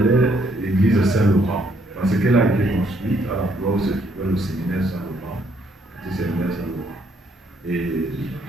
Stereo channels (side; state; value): both; normal; correlation 0.69